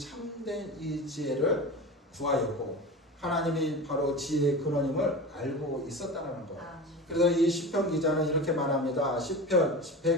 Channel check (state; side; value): normal; both; correlation 0.30